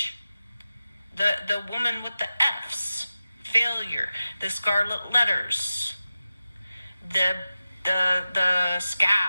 The woman with the Fs. Failure. The scarlet letters. The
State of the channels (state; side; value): inverted; both; correlation -0.93